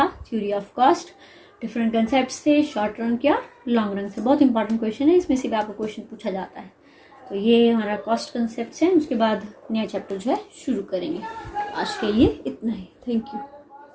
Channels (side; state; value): both; identical; correlation 1.00